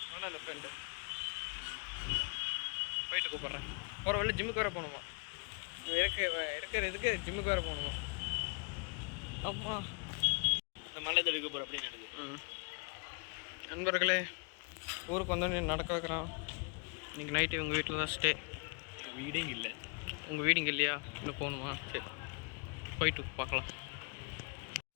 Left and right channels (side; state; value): right; quieter; 34.6 dB